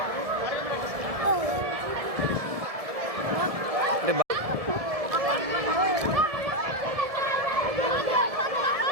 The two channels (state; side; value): late; left; 1.7 ms